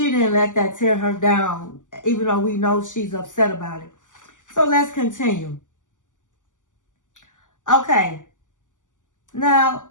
let that tear her down, even though we know she's upset about it. So let's continue. Okay. Now,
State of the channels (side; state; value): right; late; 0.87 ms